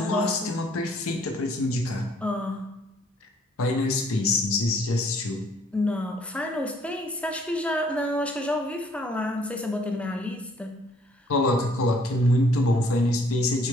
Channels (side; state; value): both; normal; correlation 0.62